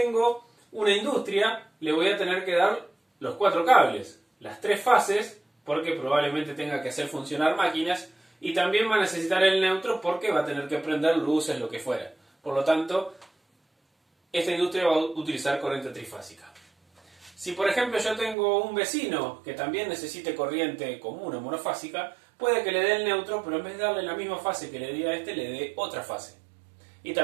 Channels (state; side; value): drops out; left; at 18.4 s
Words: una industria, le voy a tener que dar los 4 cables, las 3 fases, porque probablemente tenga que hacer funcionar máquinas, y también va a necesitar el neutro porque va a tener que prender luces, lo que fuera. Por lo tanto, esta industria va a utilizar corriente trifásica. Si por ejemplo yo tengo un vecino que también necesite corriente común o monofásica, puede que le dé el neutro, pero en vez de darle la misma fase que le di a este, le dé otra fase. Y